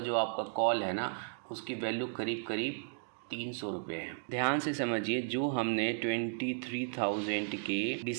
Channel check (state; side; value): silent; left; digital silence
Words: आपका कॉल है ना, उसकी वैल्यू करीब करीब 300 रुपये है। ध्यान से समझिए, जो हमने 23,000 के